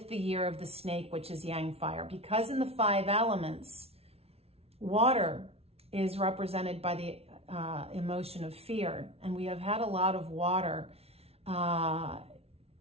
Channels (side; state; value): left; late; 0.30 ms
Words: the year of the snake, which is yang fire. Because in the 5 elements, water is represented by the emotion of fear. And we have had a lot of water